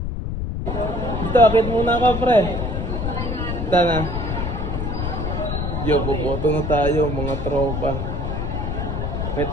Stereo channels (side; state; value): left; noise; rumble, 2 dB below the sound